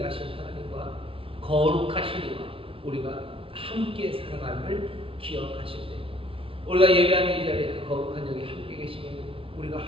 하나님과 거룩하신 이와 우리가 함께 살아감을 기억하실 때, 우리가 예배하는 이 자리에 그 거룩한 영이 함께 계시면 우리가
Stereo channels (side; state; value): left; late; 0.26 ms